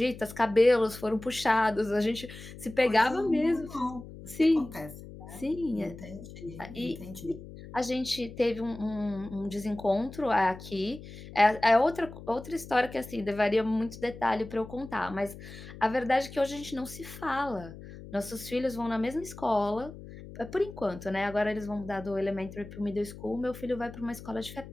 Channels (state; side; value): noise; left; hum, 15 dB below the sound